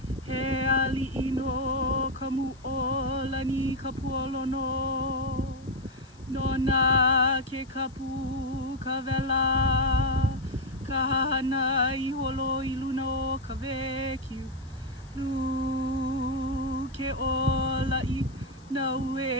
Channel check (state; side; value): noise; left; hiss, 29 dB below the sound